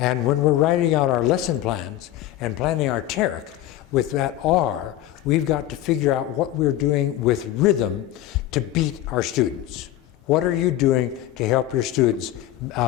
when we're writing out our lesson plans and planning our TERC, with that R, we've got to figure out what we're doing with rhythm to beat our students. What are you doing to help your students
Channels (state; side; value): quieter; right; 13.6 dB